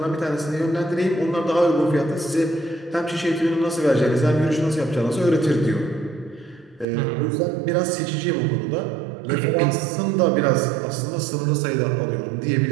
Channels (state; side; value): drops out; left; at 6.9 s